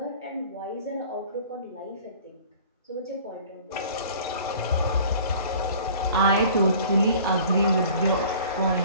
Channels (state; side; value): inverted; both; correlation -0.48